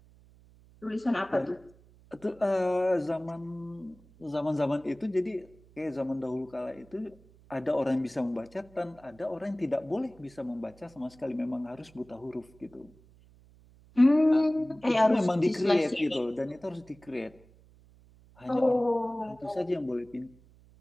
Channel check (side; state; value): right; noise; hum, 26 dB below the sound